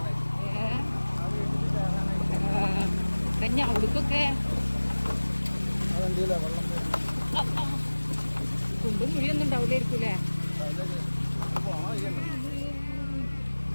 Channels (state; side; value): inverted; both; correlation -1.00